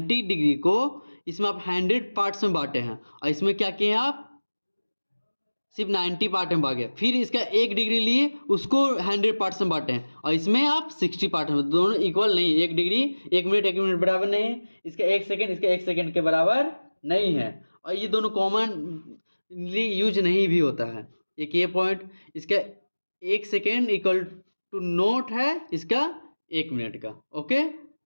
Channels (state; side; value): inverted; both; correlation -1.00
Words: डिग्री को इसमें आप 100 पार्ट्स में बांटे हैं, और इसमें क्या किए हैं आप सिर्फ 90 पार्ट में बांटे, फिर इसका 1 डिग्री लिए उसको 100 पार्ट्स में बांटे हैं, और इसमें आप 60 पार्ट में, दोनों इक्वल नहीं, 1 डिग्री 1 मिनट बराबर नहीं है, इसका 1 सेकेंड इसका 1 सेकेंड के बराबर नहीं है, और ये दोनों कॉमनली यूज नहीं भी होता है। एक ये पॉइंट, इसका 1 सेकेंड इक्वल टू नोट है इसका 1 मिनट का। ओके,